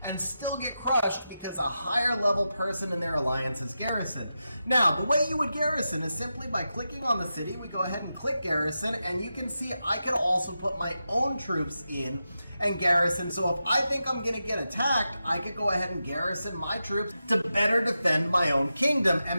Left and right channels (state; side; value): inverted; both; correlation -0.90